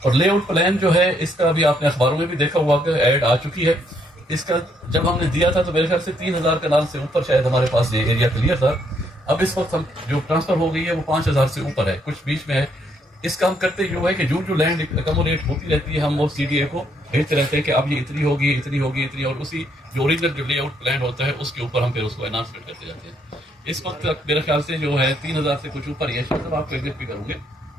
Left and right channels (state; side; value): normal; both; correlation 0.72